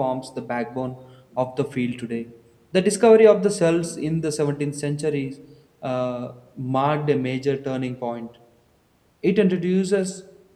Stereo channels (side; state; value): both; identical; correlation 1.00